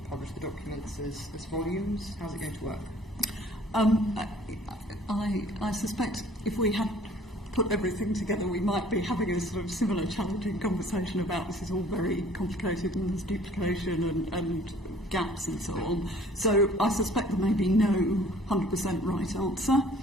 publish the documents as volumes? How's it going to work? I suspect if we had put everything together, we might be having a sort of similar challenging conversation about this is all very complicated and there's duplication and gaps and so on. So I suspect there may be no 100% right answer.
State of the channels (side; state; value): both; normal; correlation 0.54